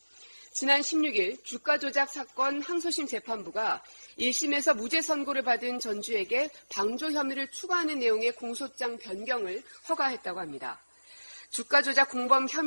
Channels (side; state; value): both; inverted; correlation -1.00